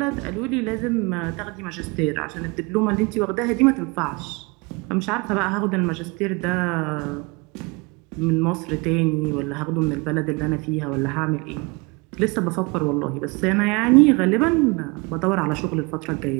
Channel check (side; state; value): left; quieter; 27.9 dB